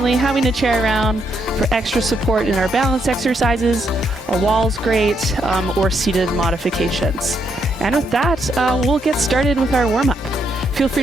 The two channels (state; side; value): normal; both; correlation 0.76